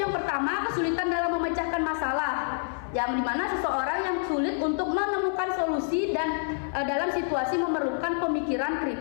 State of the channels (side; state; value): right; silent; 55 dB below the other